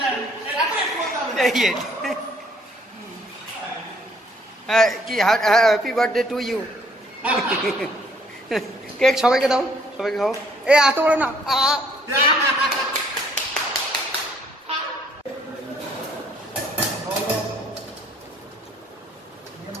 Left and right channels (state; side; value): normal; both; correlation 0.63